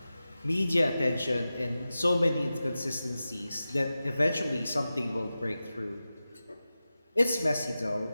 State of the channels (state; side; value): inverted; both; correlation -0.94